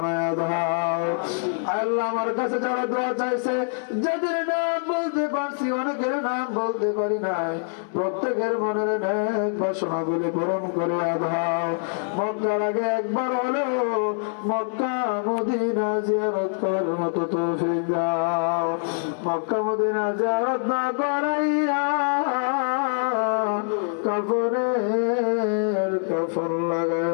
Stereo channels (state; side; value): silent; right; 62 dB below the other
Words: দাও। আয় আল্লাহ, আমার কাছে যারা দোয়া চাইছে, যাদের নাম বলতে পারছি, অনেকের নাম বলতে পারি নাই, প্রত্যেকের মনের নেক বাসনাগুলি পূরণ করে দাও। মক্কার আগে একবার হলেও মক্কা মদিনা জিয়ারত করার মতো তৌফিক দাও। মক্কা মদিনা জিয়ারত না করাইয়া কাফনের কাফন